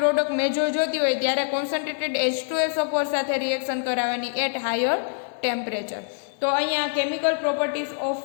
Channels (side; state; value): right; silent; 58 dB below the other